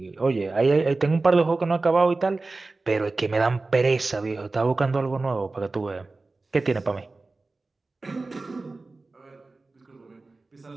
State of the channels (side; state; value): left; quieter; 3.5 dB